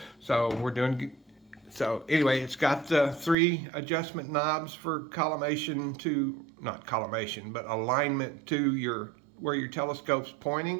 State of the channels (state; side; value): drops out; left; at 3.4 s